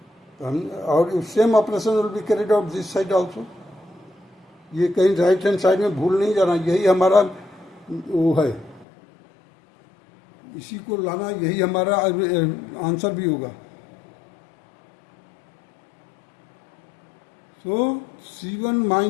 तो हम, और same operation will be carried out this side also. ये कहीं राइट हैंड साइड में भूल नहीं जाना, यही हमारा वो है, इसी को लाना, यही हमारा आंसर भी होगा। सो C1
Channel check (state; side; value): drops out; right; at 8.8 s